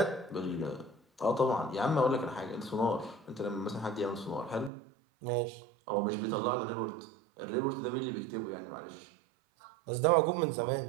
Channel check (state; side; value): drops out; left; at 4.7 s